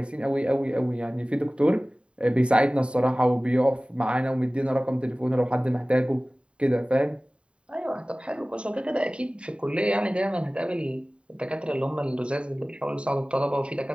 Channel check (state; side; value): late; left; 0.056 ms